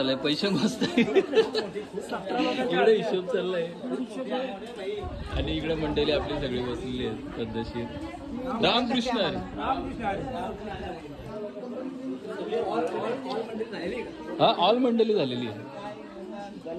पैसे मस्त. इकडे हिशोब चाललाय. आणि इकडे मंडळी आपली सगळी बसलेली आहेत पद्धतशीर. रामकृष्ण. हा ऑल मंडळी झालेली आहे.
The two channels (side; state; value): both; identical; correlation 1.00